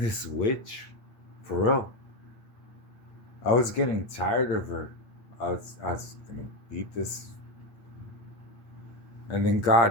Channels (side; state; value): right; late; 8.7 ms